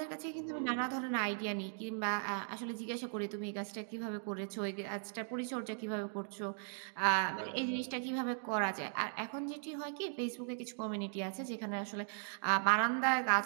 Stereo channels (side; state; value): left; silent; digital silence